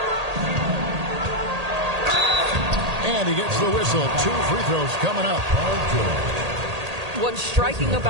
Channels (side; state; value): left; late; 1.8 ms